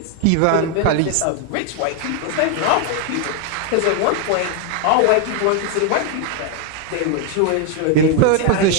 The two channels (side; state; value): both; different; correlation 0.01